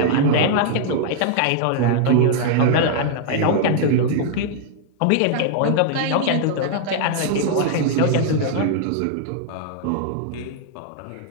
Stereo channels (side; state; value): both; different; correlation -0.01